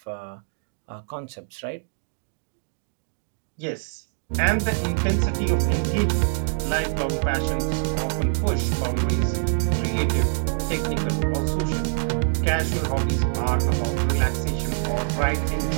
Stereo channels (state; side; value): silent; left; digital silence